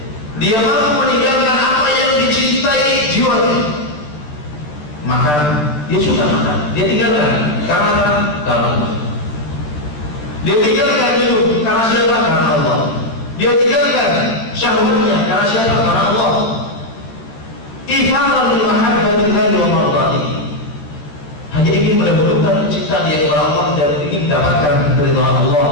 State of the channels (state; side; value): late; right; 13 ms